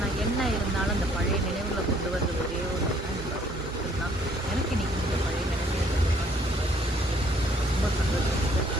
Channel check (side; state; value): both; normal; correlation 0.62